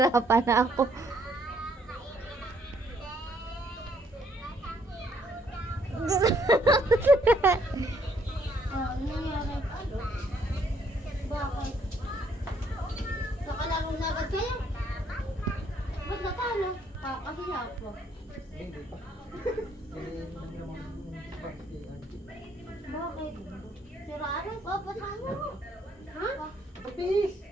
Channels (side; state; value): both; normal; correlation 0.68